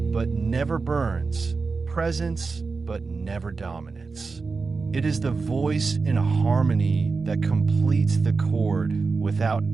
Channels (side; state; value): left; quieter; 4.4 dB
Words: but never burns, presence, but never dominance. It is the voice in a harmony that completes the chord without